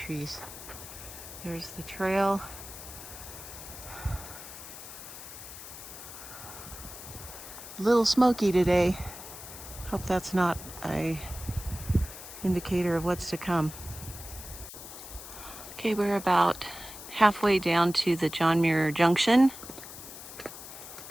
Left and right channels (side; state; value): left; noise; hiss, 13 dB below the sound